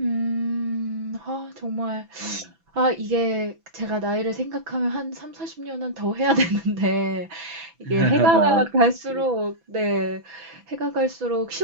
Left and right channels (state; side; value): late; left; 6.0 ms